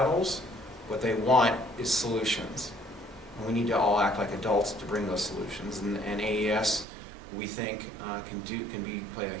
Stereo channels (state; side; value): drops out; left; at 6.9 s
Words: What they want is solutions. And we need to all act like adults to bring those solutions. And AES, we think, can play a